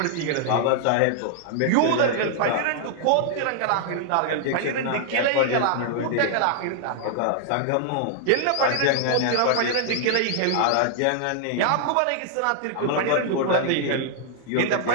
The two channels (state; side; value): different; both; correlation -0.01